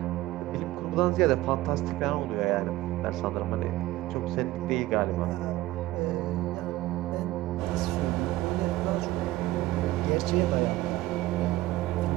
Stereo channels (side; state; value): left; quieter; 17.1 dB